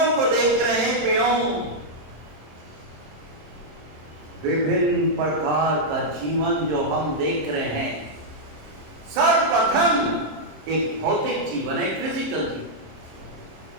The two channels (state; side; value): late; left; 26 ms